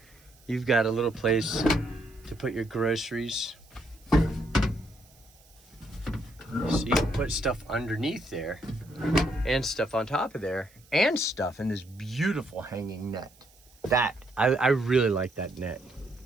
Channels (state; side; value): noise; right; hiss, 28 dB below the sound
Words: you've got a little place to put your groceries. So you can put stuff underneath there and stuff on top of there and stuff in this beautiful hanging net. I really like that net.